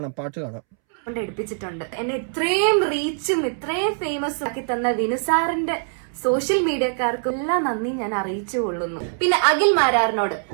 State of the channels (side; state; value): left; silent; 63 dB below the other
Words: പാട്ട് കാണാം. എടുപ്പിച്ചിട്ടുണ്ട്. എന്നെ ഇത്രയും റീച്ചും ഇത്രയും ഫേമസ് ആക്കി തന്ന വിനു സാറിന്റെ സോഷ്യൽ മീഡിയക്കാർക്കും എല്ലാം നന്ദി ഞാൻ അറിയിച്ചു കൊള്ളുന്നു. പിന്നെ അഖിൽ മാരാറിനോട്,